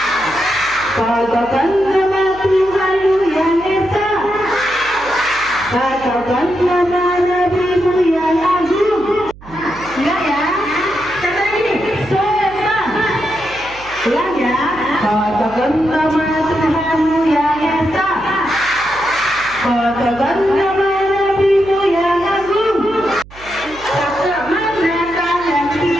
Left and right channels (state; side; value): noise; right; hum, 20 dB below the sound